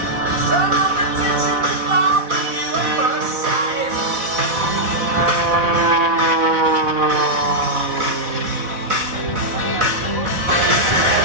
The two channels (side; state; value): left; late; 4.1 ms